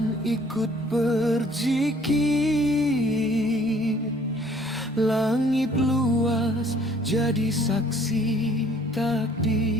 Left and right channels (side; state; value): both; normal; correlation 0.57